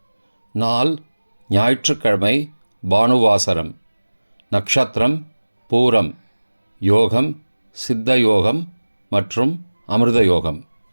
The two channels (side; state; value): both; inverted; correlation -1.00